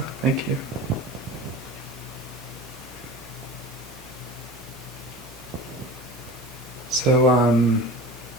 thank you. So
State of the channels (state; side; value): normal; both; correlation 0.35